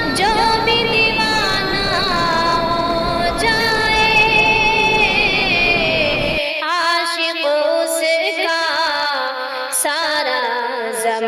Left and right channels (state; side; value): identical; both; correlation 1.00